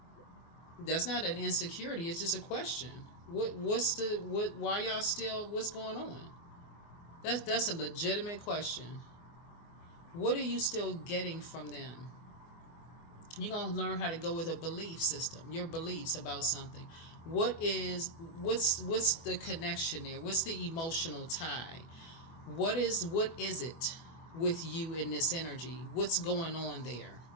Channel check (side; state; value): right; late; 24 ms